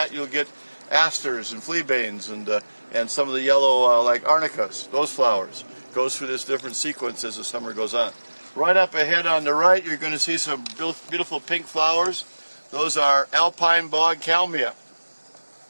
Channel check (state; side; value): inverted; both; correlation -1.00